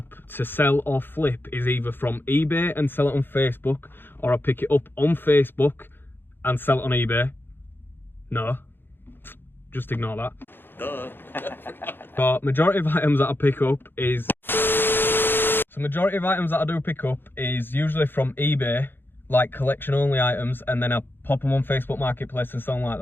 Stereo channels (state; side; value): late; right; 0.10 ms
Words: to sell or flip is either from eBay and sell it on Facebook, or I pick it up on Facebook and sell it on eBay. No, just ignore that. Duh. But majority of items that I pick up is usually from eBay, like collection only items, and then I pop them on Facebook Marketplace and something like